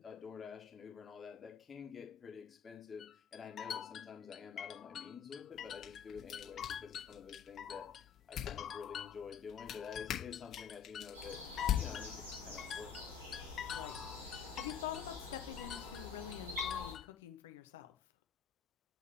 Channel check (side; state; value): right; quieter; 7.8 dB